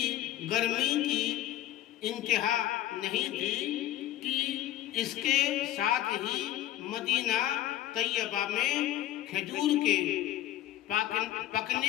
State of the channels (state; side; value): quieter; right; 13.8 dB